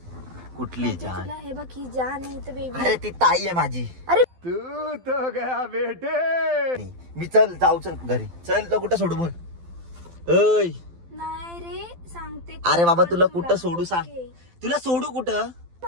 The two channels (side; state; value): left; late; 12 ms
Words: कुठली जान? तुला हे बघ, ही जान आहे तर बेबी. अरे ती ताई आहे माझी. अरे तू तो गया बेटे. मी चल जाऊ, चल घरी चल. तुला कुठं सोडू बोल? ओय नाही रे, सांगते. अरे बाबा तुला कुठं सोडू सांग? ओके. तुला सोडू कुठं?